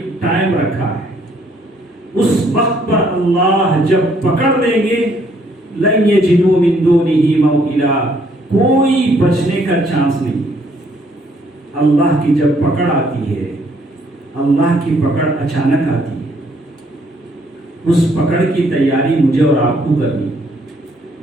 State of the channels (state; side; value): normal; both; correlation 0.66